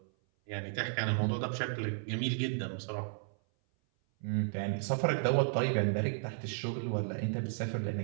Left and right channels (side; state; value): left; silent; 55 dB below the other